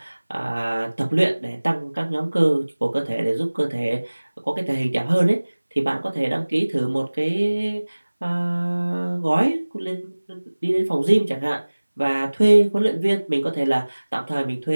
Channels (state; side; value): inverted; both; correlation -1.00